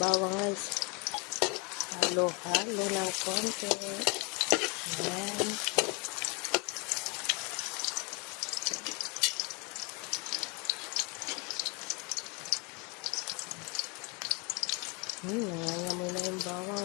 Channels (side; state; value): right; quieter; 31.4 dB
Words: guys. Halo-halo ng konti. Ayan. Nangangamoy na yung